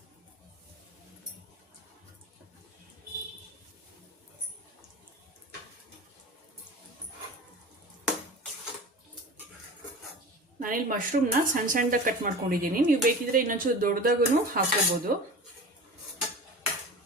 ನಾನಿಲ್ಲಿ ಮಶ್ರೂಮ್ನ ಸಣ್ಣದಾಗಿ ಕಟ್ ಮಾಡ್ಕೊಂಡಿದ್ದೀನಿ. ನೀವು ಬೇಕಿದ್ರೆ ಇನ್ನೊಂಚೂರು ದೊಡ್ಡದಾಗೂ ಹಾಕೋಬಹುದು.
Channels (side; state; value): both; normal; correlation 0.35